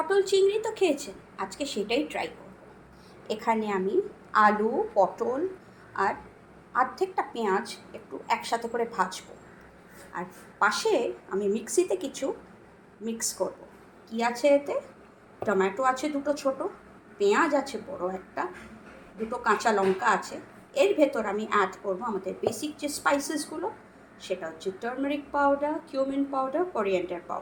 চিংড়ি তো খেয়েছেন, আজকে সেটাই ট্রাই করব। এখানে আমি আলু, পটল আর অর্ধেকটা পেঁয়াজ একটু একসাথে করে ভাজবো। আর পাশে আমি মিক্সিতে কিছু মিক্স করব। কি আছে এতে? টমেটো আছে দুটো ছোট, পেঁয়াজ আছে বড় একটা, দুটো কাঁচা লঙ্কা আছে। এর ভেতর আমি অ্যাড করব আমাদের বেসিক যে স্পাইসেসগুলো, সেটা হচ্ছে turmeric powder, cumin powder, coriander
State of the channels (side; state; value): both; identical; correlation 1.00